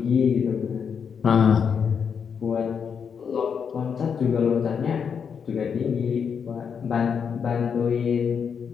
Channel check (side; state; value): right; quieter; 6.8 dB